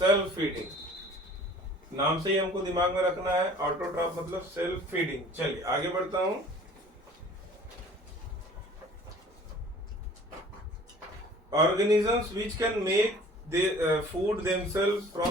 फीडिंग, नाम से ही हमको दिमाग में रखना है। ऑटोट्रॉफ मतलब सेल्फ फीडिंग। चलिए आगे बढ़ता हूं। Organisms which can make food themselves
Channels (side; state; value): both; normal; correlation 0.49